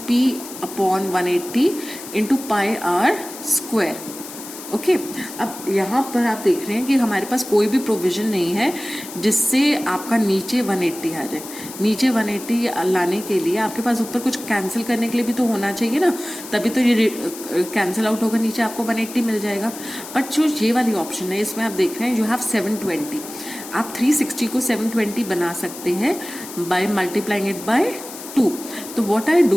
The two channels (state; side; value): noise; left; hiss, 13 dB below the sound